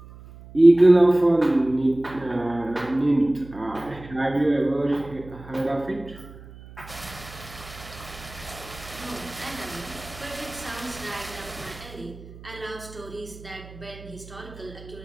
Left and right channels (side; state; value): right; noise; hum, 18 dB below the sound